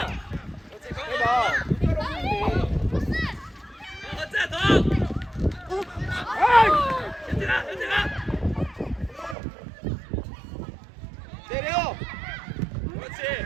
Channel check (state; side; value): drops out; left; at 9.3 s